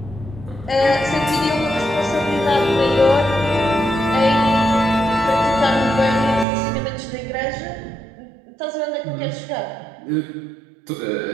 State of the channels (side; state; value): left; drops out; at 6.5 s